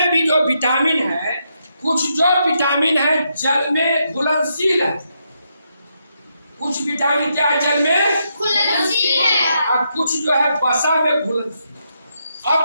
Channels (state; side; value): inverted; both; correlation -0.80